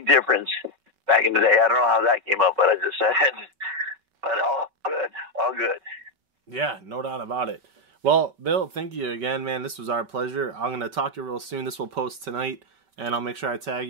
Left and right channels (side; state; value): left; late; 5.3 ms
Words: difference back in the day. I don't know how that came up, but I just said it. But all good. Yeah, no doubt about it. Well, Bill, thank you again, man. This was our pleasure. I'm going to talk to you real soon. This will post tonight, and I'll make sure I tag